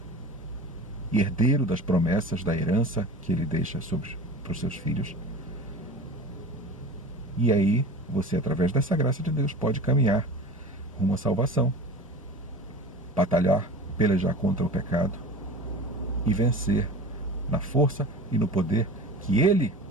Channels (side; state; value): both; normal; correlation 0.36